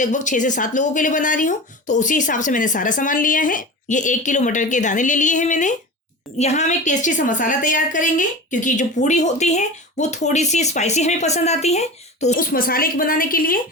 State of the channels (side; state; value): both; normal; correlation 0.31